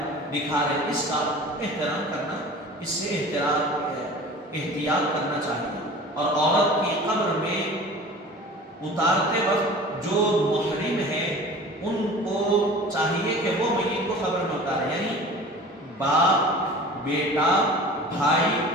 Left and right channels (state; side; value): normal; both; correlation 0.40